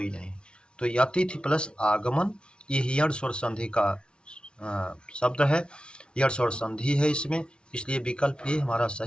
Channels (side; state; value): right; late; 0.057 ms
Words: नहीं। तो ये अतिथि प्लस आगमन ये यण स्वर संधि का शब्द है, यण स्वर संधि है इसमें, इसलिए विकल्प ये हमारा